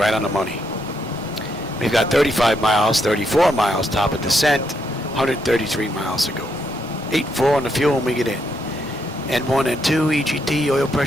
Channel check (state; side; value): normal; both; correlation 0.78